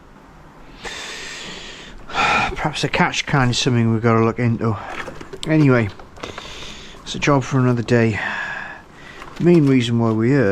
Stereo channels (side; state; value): both; identical; correlation 1.00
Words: Perhaps a catch can is something we've got to look into. Anyway, it's a job for another day. The main reason why we're